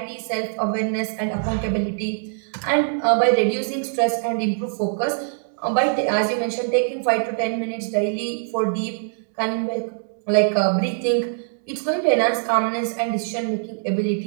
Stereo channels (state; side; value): silent; left; digital silence